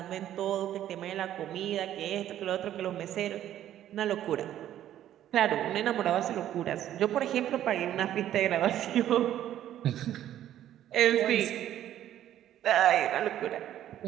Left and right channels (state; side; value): quieter; left; 11.8 dB